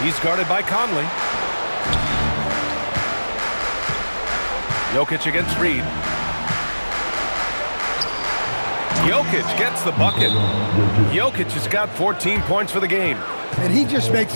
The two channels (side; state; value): both; inverted; correlation -1.00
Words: He's guarded by Conley. Jokic against Reed. Jokic gets the bucket. Jokic has got 14 points for the game. And he just makes